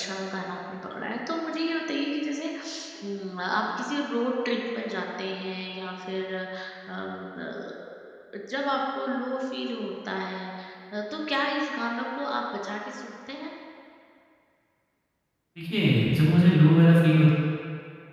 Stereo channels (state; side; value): identical; both; correlation 1.00